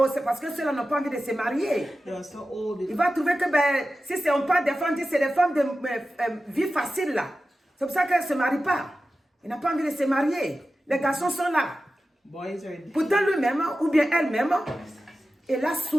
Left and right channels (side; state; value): both; normal; correlation 0.93